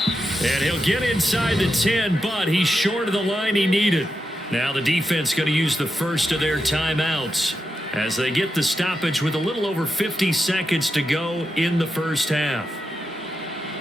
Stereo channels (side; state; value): both; normal; correlation 0.87